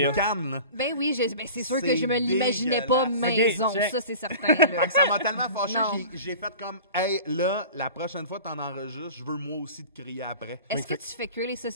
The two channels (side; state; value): both; inverted; correlation -0.39